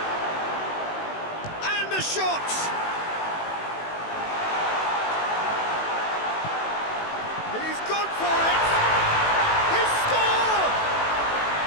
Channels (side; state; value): right; late; 18 ms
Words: And a shot! He's gone for it! He scored!